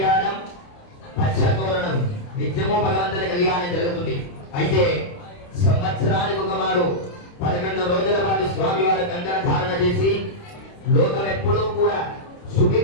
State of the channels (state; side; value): late; right; 29 ms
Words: పచ్చతోరణం, నిత్యము భగవంతుని కళ్యాణం జరుగుతుంది. అయితే సంవత్సరానికి ఒక మారు 11 రోజుల పాటు స్వామివారి కంకణ ధారణ చేసి లోకం ఎప్పుడూ కూడా